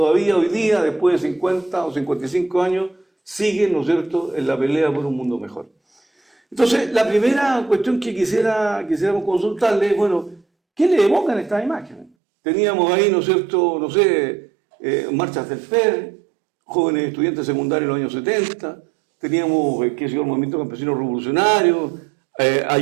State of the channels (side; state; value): left; drops out; at 12.1 s